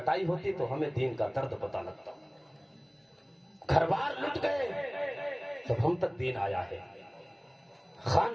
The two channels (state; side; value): identical; both; correlation 1.00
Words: ہوتی تو ہمیں دین کا درد پتہ لگتا. گھر بار لٹ گئے تب ہم تک دین آیا ہے,